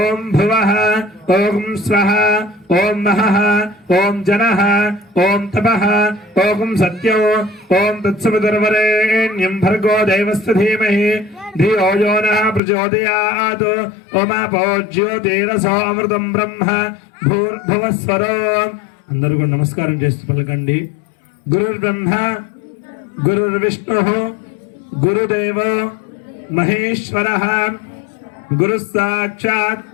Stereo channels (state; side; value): drops out; right; at 12.6 s